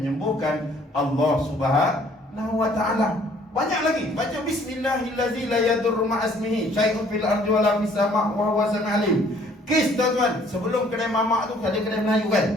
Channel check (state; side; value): normal; both; correlation 0.59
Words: Allah Subhanahu wa ta'ala. Banyak lagi. Baca bismillahillazi la yadurru ma'asmihi syai'un fil ardi wala fis sama' wa huwa sami'ul alim. Kes tuan-tuan, sebelum kedai mamak tu ada kedai Melayu